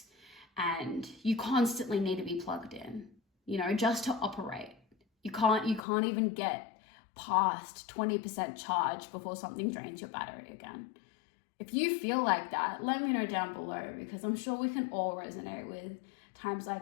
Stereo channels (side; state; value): right; drops out; at 5.8 s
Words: and you constantly need to be plugged in, just to operate. You can't even get past 20% charge before something drains your battery again. If you feel like that, let me know down below, because I'm sure we can all resonate with times